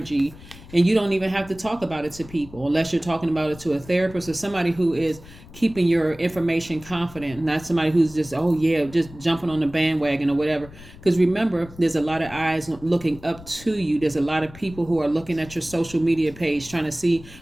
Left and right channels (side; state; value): left; noise; rumble, 19 dB below the sound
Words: and you don't even have to talk about it to people unless you're talking about it to a therapist or somebody who is keeping your information confident, not somebody who's just just jumping on the bandwagon or whatever. Because remember, there's a lot of eyes looking up to you. There's a lot of people who are looking at your social media page trying to see